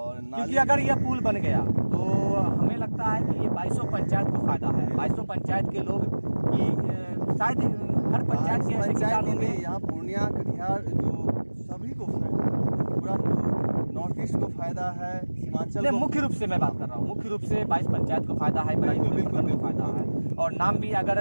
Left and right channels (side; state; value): both; inverted; correlation -1.00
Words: क्योंकि अगर यह पुल बन गया तो हमें लगता है कि ये 22 पंचायत को फायदा है। 22 पंचायत के लोग की शायद हर पंचायत के ऐसे किसान होंगे। यहाँ पूर्णिया कटिहार जो सभी को फायदा, पूरा नॉर्थ ईस्ट को फायदा है, सीमांचल को। मुख्य रूप से मैं बात कर रहा हूँ, मुख्य रूप से 22 पंचायत को फायदा है, बराड़ी को फायदा है। और नाम भी